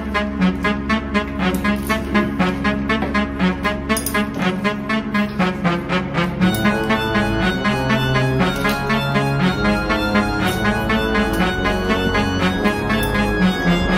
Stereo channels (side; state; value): both; identical; correlation 1.00